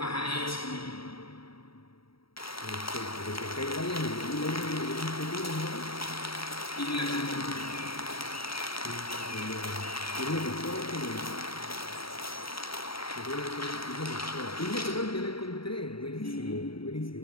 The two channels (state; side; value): late; right; 0.75 ms